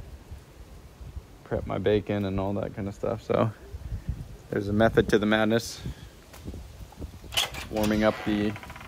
prep my bacon and all that kind of stuff. So there's a method to the madness. Warming up the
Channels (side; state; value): both; identical; correlation 1.00